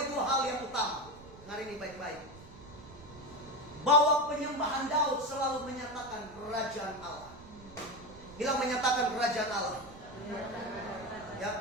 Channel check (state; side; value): noise; right; rumble, 19 dB below the sound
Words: dua hal yang utama. Hari ini baik-baik. Bahwa penyembahan Daud selalu menyatakan kerajaan Allah. Bilang menyatakan kerajaan Allah.